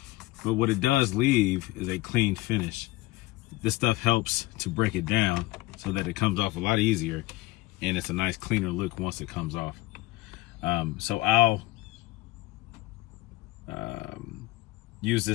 but what it does leave is a clean finish. This stuff helps to break it down so that it comes off a lot easier, and it's a nice cleaner look once it comes off. So I'll use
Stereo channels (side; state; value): right; quieter; 19.3 dB